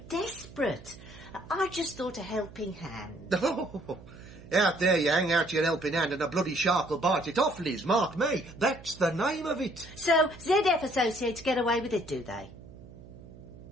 desperate. I just thought a helping hand. Oh, out there you hang out your helping hand and a bloody shark will bite it off, Liz, mark me. That's the name of it. So, ZF Associates get away with it, do they?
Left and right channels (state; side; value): noise; right; hum, 18 dB below the sound